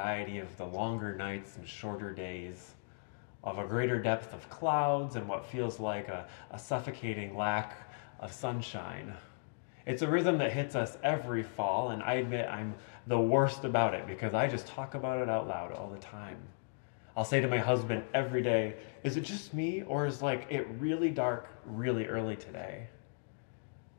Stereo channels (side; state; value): right; silent; digital silence